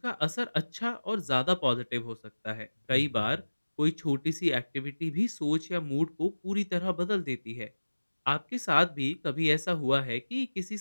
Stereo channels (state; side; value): inverted; both; correlation -1.00